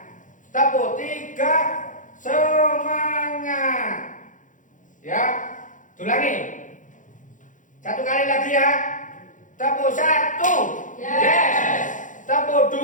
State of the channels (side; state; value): right; late; 0.37 ms